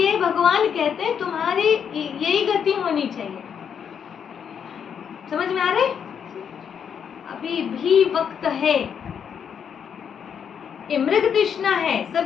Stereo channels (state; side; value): quieter; right; 7.6 dB